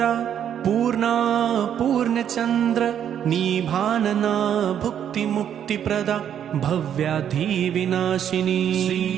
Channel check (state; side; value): quieter; left; 9.3 dB